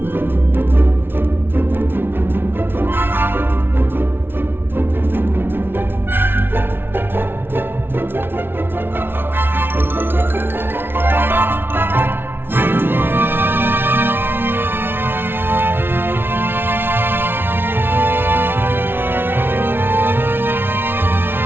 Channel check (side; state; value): left; late; 0.11 ms